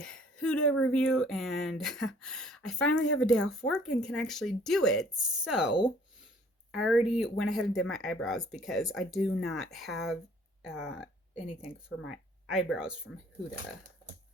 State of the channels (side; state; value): both; normal; correlation 0.57